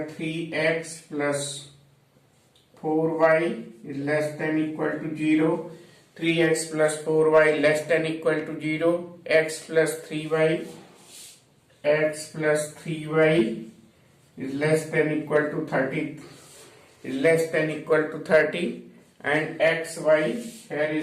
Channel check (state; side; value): identical; both; correlation 1.00